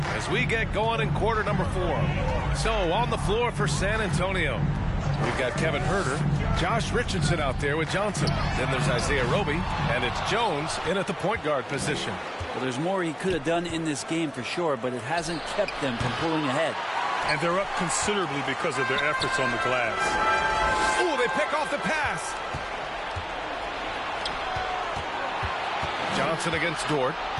we get going in quarter number 4. So on the floor for San Antonio, we've got Kevin Herder, Josh Richardson out there with Johnson. Then there's Isaiah Roby, and it's Jones in at the point guard position. Well, there's more he could have done in this game for sure, but it hasn't kept them from pulling ahead. And they're up considerably because of their efforts on the glass. Ooh, they pick off the pass. Johnson against Dort.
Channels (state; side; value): identical; both; correlation 1.00